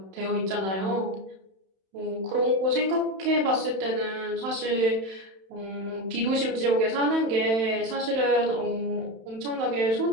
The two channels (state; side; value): late; left; 31 ms